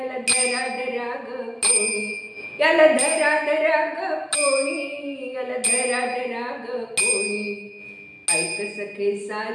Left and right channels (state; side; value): identical; both; correlation 1.00